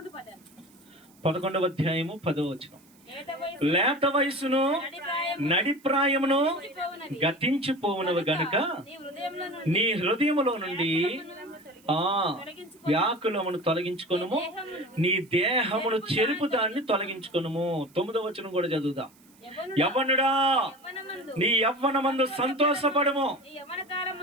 11వ అధ్యాయము 10వ వచనం. లేత వయసును నడిప్రాయమును గతించిపోవునవి గనుక నీ హృదయములో నుండి వ్యాకులమును తొలగించుకొనుము, నీ దేహమును చెరుపు దాన్ని తొలగించుకొనుము. 9వ వచనం కూడా చదువుదాం. యవ్వనుడా, నీ యవ్వనమందు సంతోషపడము,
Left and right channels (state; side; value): noise; right; hiss, 29 dB below the sound